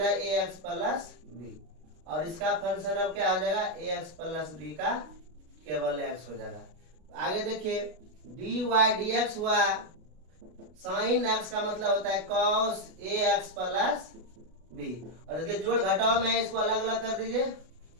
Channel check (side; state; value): left; late; 33 ms